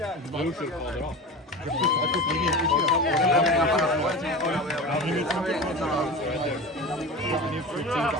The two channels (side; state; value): both; normal; correlation 0.30